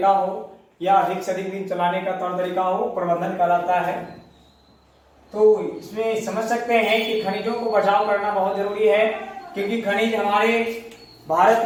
हो या अधिक से अधिक दिन चलाने का तौर तरीका हो, प्रबंधन कहलाता है। तो इसमें समझ सकते हैं कि खनिजों को बचाव करना बहुत जरूरी है, क्योंकि खनिज हमारे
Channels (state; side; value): identical; both; correlation 1.00